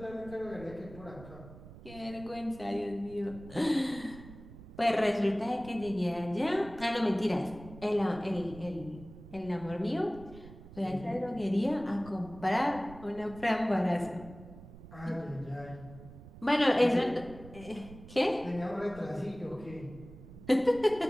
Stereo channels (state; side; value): noise; right; rumble, 17 dB below the sound